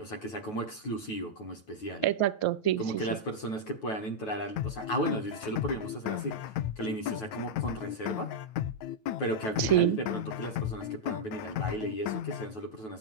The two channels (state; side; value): late; right; 9.3 ms